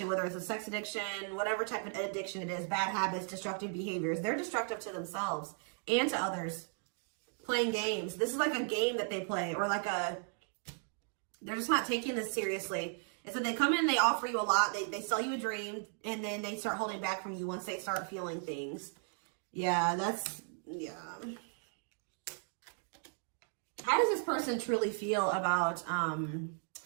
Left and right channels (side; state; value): left; silent; 54 dB below the other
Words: whether it's a sex addiction, whatever type of addiction it is, bad habits, destructive behaviors. They're destructive to themselves and to others. Playing games. This is like a game that they play, or like they're just not taking this seriously. And so they come in, they offer you a lot, they sell you a dream, and then they start holding back from you once they start feeling things. Yeah, yeah. How does this person truly feel about, my